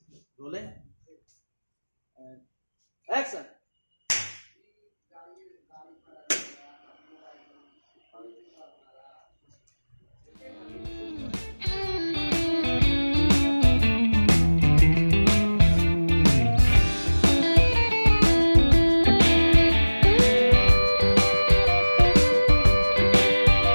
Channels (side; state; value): both; inverted; correlation -1.00